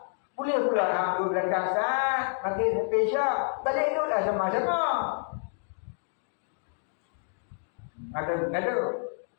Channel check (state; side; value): silent; right; digital silence